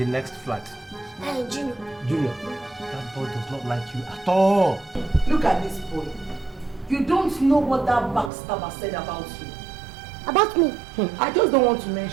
next flat? Hey, Junior. Junior. That boy does not like you at all. Look at this boy. You don't know what that backstabber said about you. About me? I just don't want to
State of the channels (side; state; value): left; drops out; at 8.3 s